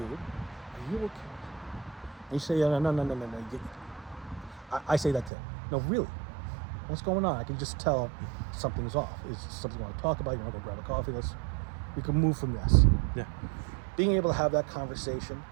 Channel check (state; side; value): drops out; left; at 5.3 s